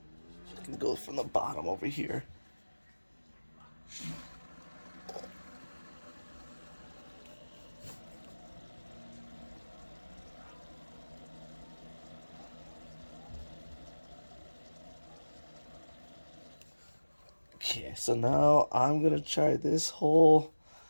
can go from the bottom over here. Okay, so now I'm gonna try this hole.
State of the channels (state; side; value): inverted; both; correlation -1.00